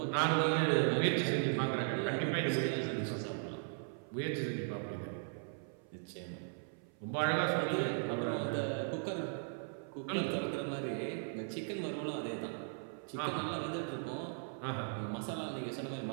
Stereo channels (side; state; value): left; silent; 53 dB below the other